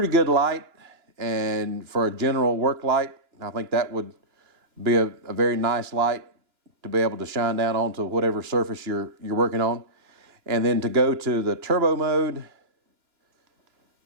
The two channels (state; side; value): late; left; 2.9 ms